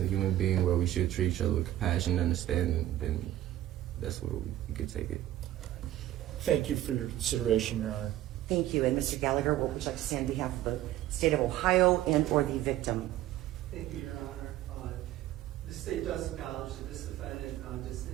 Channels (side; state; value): left; quieter; 13.9 dB